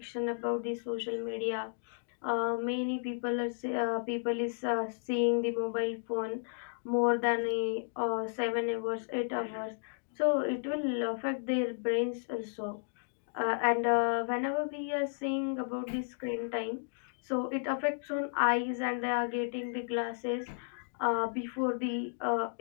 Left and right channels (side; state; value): right; silent; digital silence